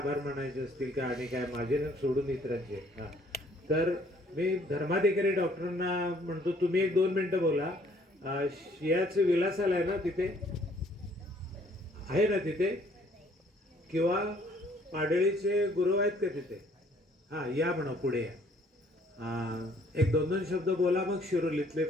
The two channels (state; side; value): normal; both; correlation 0.61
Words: मानायचे असतील का आणि काय माझे ना सोडून इतरांचे. हां, तर मी धर्माधिकारी डॉक्टरांना म्हणतो तुम्ही 1-2 मिनिटं बोला. शियाचं विलास आलाय ना तिथे, आहे ना तिथे, किंवा पाडळीचे गुरु आहेत का तिथे? हां, या म्हणा पुढे या. 1-2 शब्द बोला, मग शिरोलीतले